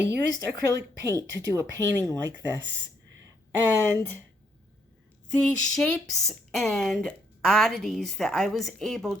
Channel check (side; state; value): both; normal; correlation 0.72